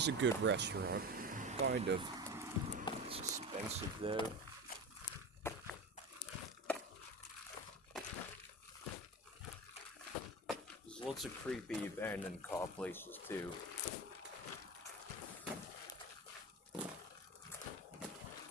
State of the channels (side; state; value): both; normal; correlation 0.27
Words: a good restaurant, kind of. It's expensive though. There's lots of creepy abandoned car places too.